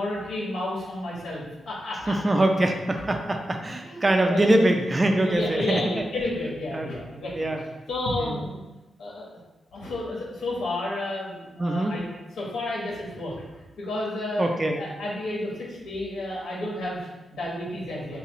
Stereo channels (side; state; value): both; normal; correlation 0.89